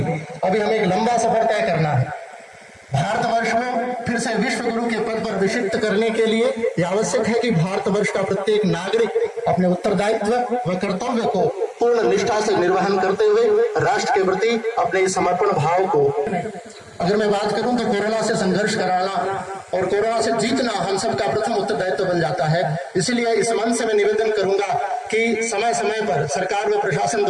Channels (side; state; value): both; identical; correlation 1.00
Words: हमें एक लंबा सफर तय करना है। भारतवर्ष को फिर से विश्व गुरु के पद पर विशिष्ट करने के लिए यह आवश्यक है कि भारतवर्ष का प्रत्येक नागरिक अपने उत्तरदायित्व व कर्तव्य को पूर्ण निष्ठा से निर्वहन करते हुए राष्ट्र के प्रति अपने समर्पण भाव को, अगर मैं बात करूं तो कोरोना से संघर्ष कराना और कोरोना से जीतना हम सबका प्रथम उत्तरदायित्व बन जाता है। इसलिए इस मंच से मैं निवेदन करूंगा कि समय समय पर सरकार व प्रशासन